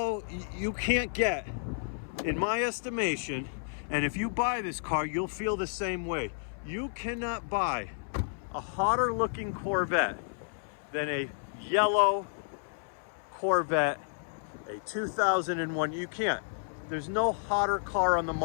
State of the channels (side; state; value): right; silent; 57 dB below the other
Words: you can't get, in my estimation. And if you buy this car, you'll feel the same way. You cannot buy a hotter looking Corvette than a yellow Corvette, a 2001. You can't. There's no hotter car on the